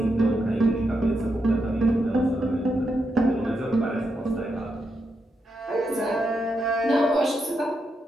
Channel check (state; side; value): normal; both; correlation 0.83